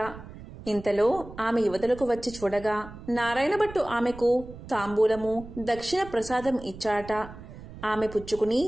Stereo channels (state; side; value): noise; right; rumble, 15 dB below the sound